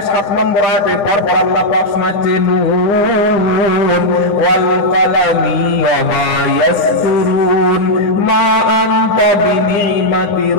নম্বর আয়াতে পরপর আল্লাহ পাক শোনাচ্ছে, নূন ওয়াল কালামি ওয়া মা ইয়াসতুরুন মা আনতা বিনিমাতি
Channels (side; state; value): right; late; 10 ms